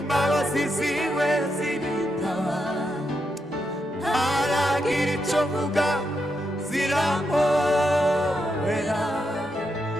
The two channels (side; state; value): both; normal; correlation 0.83